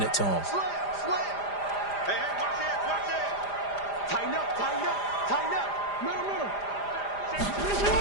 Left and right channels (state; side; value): late; right; 5.0 ms